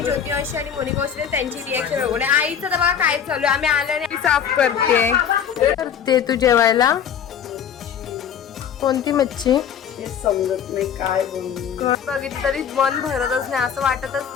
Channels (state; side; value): quieter; right; 8.2 dB